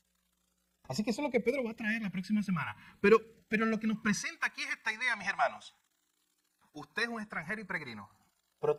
Así que eso es lo que Pedro va a traer la próxima semana. Pero lo que nos presenta aquí es esta idea, mis hermanos. Usted es un extranjero y peregrino, pero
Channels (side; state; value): both; identical; correlation 1.00